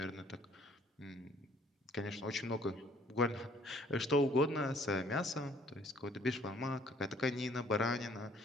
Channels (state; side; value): normal; both; correlation 0.59